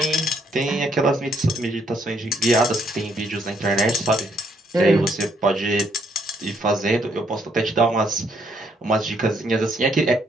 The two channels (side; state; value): both; normal; correlation 0.70